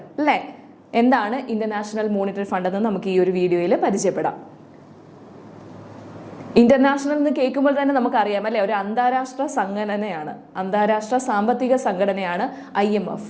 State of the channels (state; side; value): identical; both; correlation 1.00